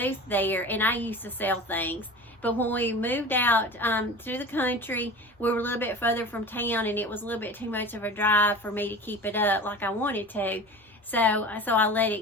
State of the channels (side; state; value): both; normal; correlation 0.35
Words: there, and I used to sell things. But when we moved out to the country, we were a little bit further from town, and it was a little bit too much of a drive for me to keep it up like I wanted to. So I let